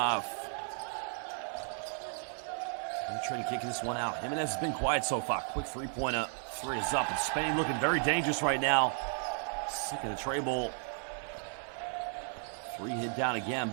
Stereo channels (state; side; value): silent; left; 55 dB below the other